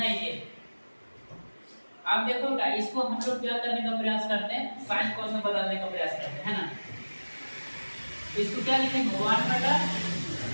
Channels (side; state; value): both; inverted; correlation -1.00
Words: ही है। अब देखो बेटा इसको हम लोग क्या करने का प्रयास करते हैं, साइन cos में बदलने का प्रयास करते हैं, है ना। इसको क्या लिखेंगे 1 बटा